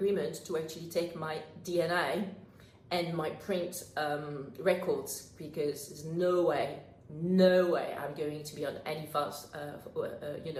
to actually take my DNA and my print records, because there's no way I'm going to be on any fast,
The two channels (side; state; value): both; identical; correlation 1.00